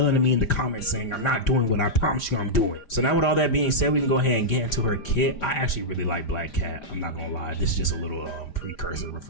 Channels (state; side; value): late; right; 5.0 ms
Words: at me in the comments saying I'm not doing what I promise you I'm doing. So now with all that being said, we can go ahead and get into her kit. I actually really like Black Cat. I'm not gonna lie. This is just a little precursor